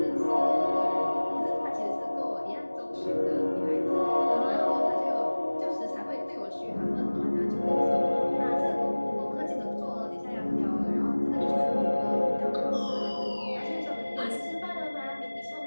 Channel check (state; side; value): inverted; both; correlation -1.00